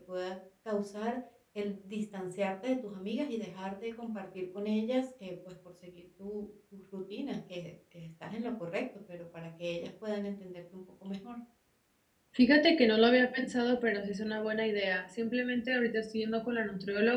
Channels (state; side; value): identical; both; correlation 1.00